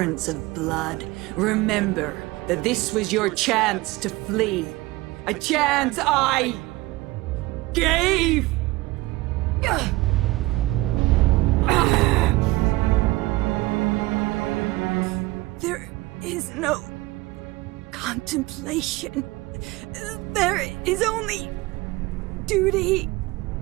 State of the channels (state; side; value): quieter; left; 20.2 dB